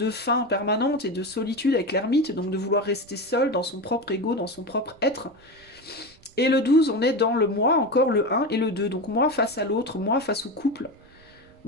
fin permanente et de solitude avec l'ermite, donc de vouloir rester seul dans son propre ego, dans son propre être. Et le 12, on est dans le moi, encore le 1 et le 2. Donc moi face à l'autre, moi face au couple,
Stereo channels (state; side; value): noise; right; rumble, 28 dB below the sound